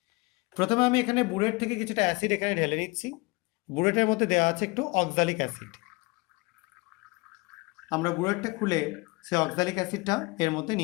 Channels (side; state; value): right; quieter; 25.3 dB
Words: প্রথমে আমি এখানে বুলেট থেকে কিছুটা অ্যাসিড এখানে ঢেলে নিচ্ছি। বুলেটের মধ্যে দেওয়া আছে একটু অক্সালিক অ্যাসিড। আমরা বুলেটটা খুলে সেই অক্সালিক অ্যাসিডটা এর মধ্যে